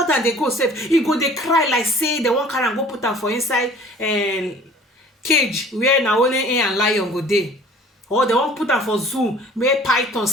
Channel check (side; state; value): both; normal; correlation 0.49